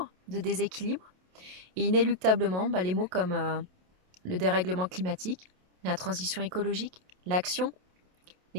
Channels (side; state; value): left; late; 27 ms